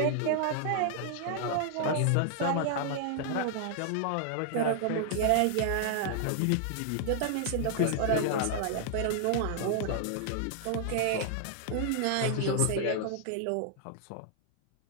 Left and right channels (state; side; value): different; both; correlation 0.00